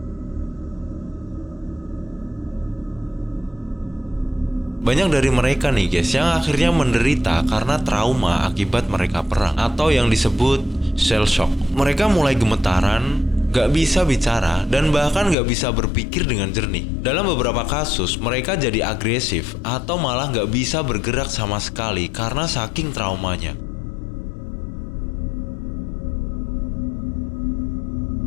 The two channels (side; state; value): right; drops out; at 15.4 s